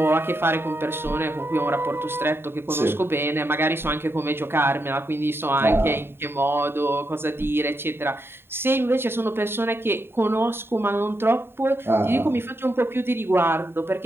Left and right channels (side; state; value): left; late; 0.11 ms